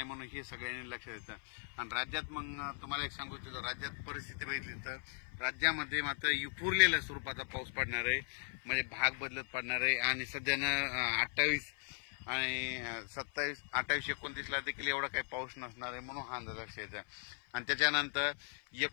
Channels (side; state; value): right; silent; 52 dB below the other